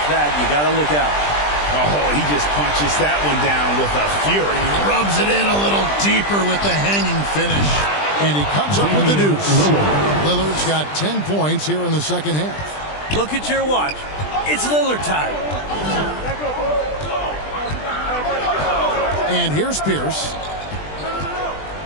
that, you got to look out. Oh, he just punches that one down with a fury. He rubs it in a little deeper with the hanging finish. And he comes up with the deuce. Lillard's got 10 points here in the second half. Look at your watch. It's Lillard time. And here's Pierce.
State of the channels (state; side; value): late; right; 20 ms